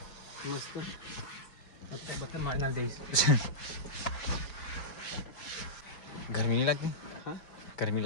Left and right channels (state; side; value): late; right; 5.1 ms